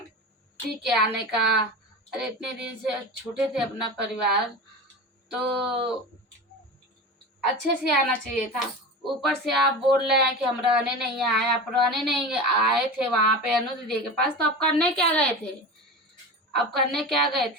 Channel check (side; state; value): both; normal; correlation 0.29